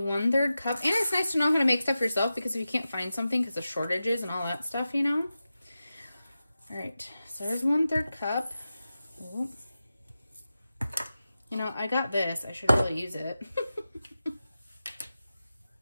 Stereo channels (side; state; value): both; inverted; correlation -0.92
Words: 1/3 cup, and it's nice to know how to make stuff yourself, because if you can't find something because of shortages and all that stuff, you know. All right, so there's 1/3 cup. Ooh. You know, I got this. I should really use it.